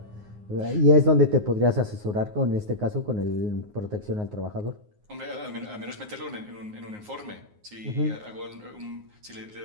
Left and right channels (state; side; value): late; left; 9.6 ms